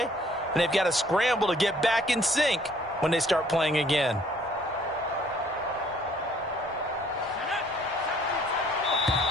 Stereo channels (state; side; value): normal; both; correlation 0.60